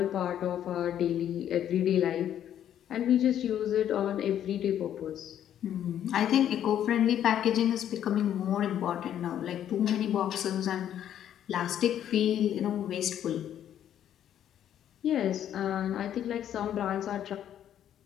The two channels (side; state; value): right; quieter; 10.4 dB